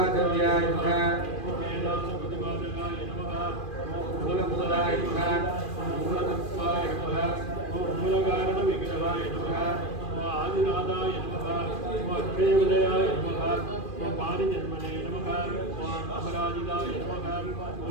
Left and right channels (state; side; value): late; right; 2.4 ms